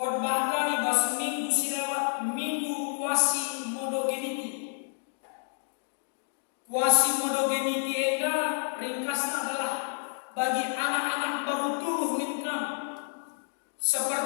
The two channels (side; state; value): right; silent; digital silence